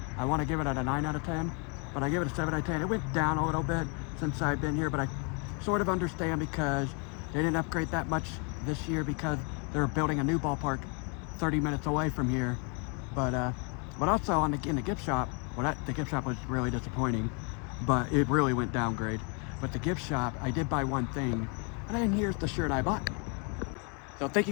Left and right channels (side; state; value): right; quieter; 36.1 dB